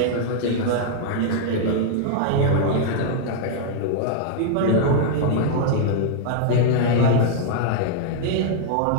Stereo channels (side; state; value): both; different; correlation -0.01